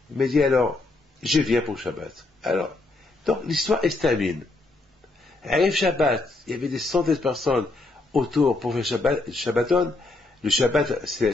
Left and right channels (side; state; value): right; quieter; 3.2 dB